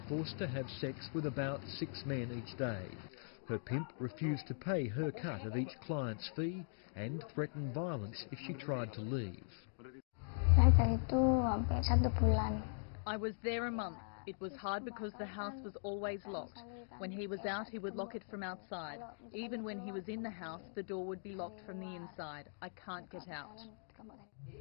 forced to have sex with about 6 men each day. Her pimp refused to pay her cut of each client's fee and threatened violence if she tried to leave. I was there a month. It was hard because the house was always locked. When he was out, he would lock it from outside. Even when he was in the house, the door would be locked from the inside. I can't get out.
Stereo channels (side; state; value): right; silent; digital silence